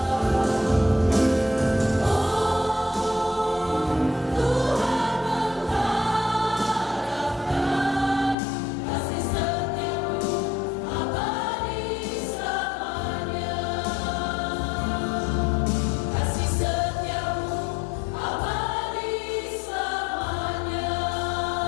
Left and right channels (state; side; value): drops out; right; at 8.3 s